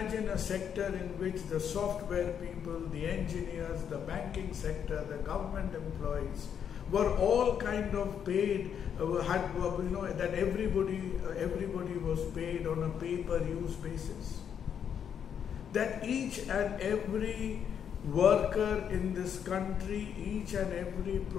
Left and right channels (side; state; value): right; quieter; 8.2 dB